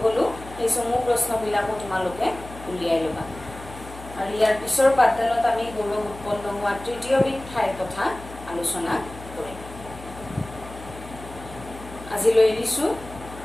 গ'লোঁ, সেই চমু প্ৰশ্নবিলাকো তোমালোকে উলিয়াই ল'বা। আৰু ইয়াৰ পিছৰ পাঠদানত আমি গৌৰৱ উৎপন্ন হোৱা তৃতীয়বিধ ঠাইৰ কথা আলোচনা কৰিম। আজিলৈ এৰিছোঁ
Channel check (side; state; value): left; noise; hum, 15 dB below the sound